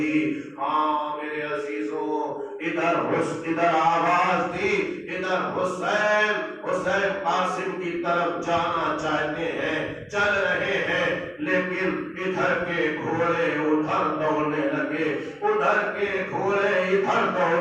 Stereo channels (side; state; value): both; identical; correlation 1.00